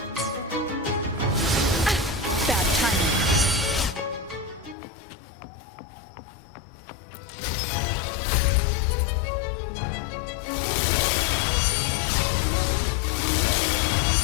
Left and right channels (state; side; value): drops out; right; at 4.8 s